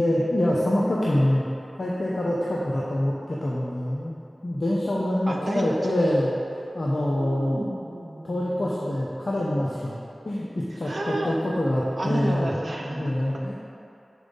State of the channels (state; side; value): normal; both; correlation 0.97